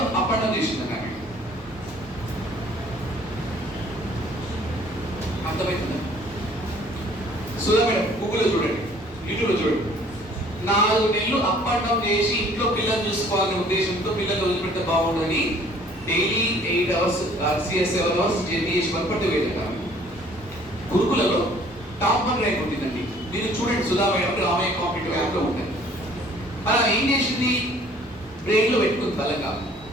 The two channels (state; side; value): normal; both; correlation 0.56